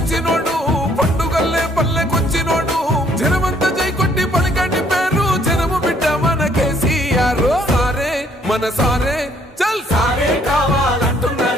పండుగల్లే పల్లెకొచ్చినోడు జనమంతా జై కొట్టి పలికండి పేరు జనము బిడ్డ మన కేసీఆర్ సారే మన సారే చల్ సారే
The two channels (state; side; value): normal; both; correlation 0.64